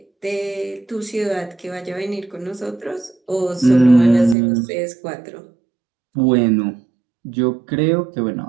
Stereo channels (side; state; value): left; drops out; at 4.4 s